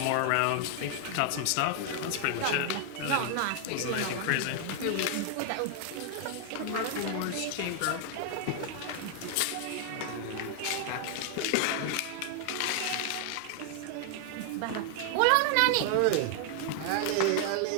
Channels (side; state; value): both; different; correlation 0.00